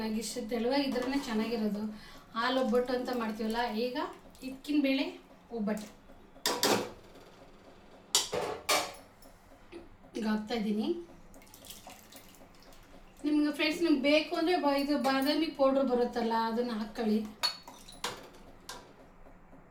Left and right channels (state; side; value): identical; both; correlation 1.00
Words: ನನಗೆ ಇಷ್ಟು ತೆಳುವಾಗಿದ್ರೇ ಚೆನ್ನಾಗಿರೋದು. ಹಾಲು ಒಬ್ಬಟ್ಟು ಅಂತ ಮಾಡ್ತೀವಲ್ಲ, ಈಗ ಹಿಕ್ಕಿನ ಬೇಳೆ ಒಬ್ಬಟ್ಟು ಈಗ ಹಾಕ್ತಾಯಿದ್ದೀನಿ. ನಿಮ್ಗೆ ಫ್ರೆಂಡ್ಸ್ ನಿಮ್ಗೆ ಬೇಕು ಅಂದರೆ ಇದು ಬಾದಾಮಿ ಪೌಡ್ರ್ ಬರುತ್ತಲ್ಲ, ಅದನ್ನು ಹಾಕ್ಕೊಳ್ಳಿ.